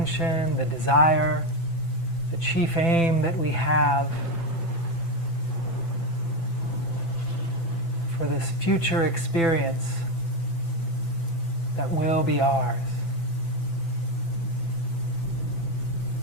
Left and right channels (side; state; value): right; late; 6.0 ms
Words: the desire, the chief aim that we have for this future experience that will be ours.